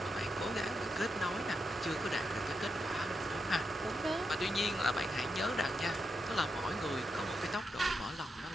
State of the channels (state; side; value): normal; both; correlation 0.85